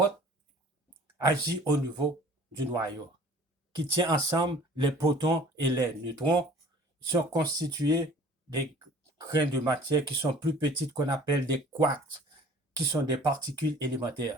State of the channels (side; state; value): both; normal; correlation 0.49